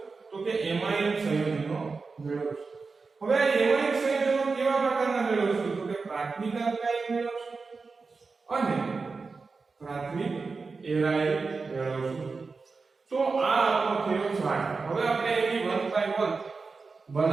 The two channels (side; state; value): left; quieter; 4.4 dB